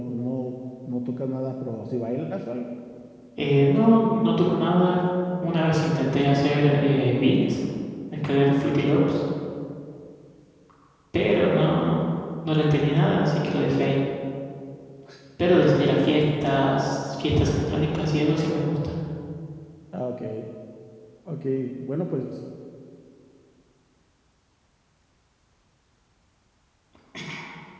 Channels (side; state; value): both; identical; correlation 1.00